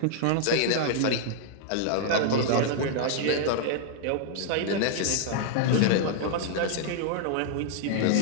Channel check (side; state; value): both; different; correlation -0.01